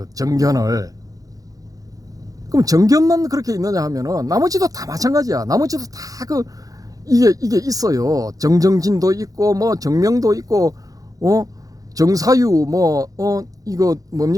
정견을. 그럼 정견만 그렇게 있느냐 하면은 나머지도 다 마찬가지야. 나머지도 다 이게 있어요. 정정진도 있고 뭐 정명도 있고 정사유 이거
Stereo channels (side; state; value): left; late; 0.17 ms